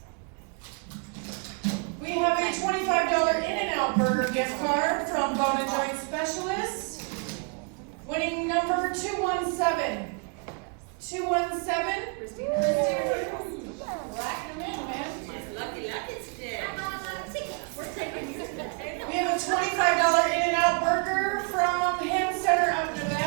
We have a $25 In-N-Out Burger gift card from Bone and Joint Specialists, winning number 217. 217. Christina. Rack them in, man. Lucky today. We're taking you today. We have a $25 In-N-Out Burger from Ham Center of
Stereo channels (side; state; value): left; quieter; 38.0 dB